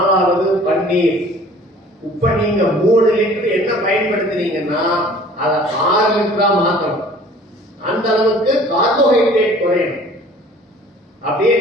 பன்னீர். இப்ப நீங்க 3 லிட்டர் என்ன பயன்படுத்துறீங்கன்னா அதை 6 லிட்டரா மாத்தணும். அந்த அளவுக்கு கார்போஹைட்ரேட் குறையணும். அப்படியே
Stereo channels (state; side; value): normal; both; correlation 0.49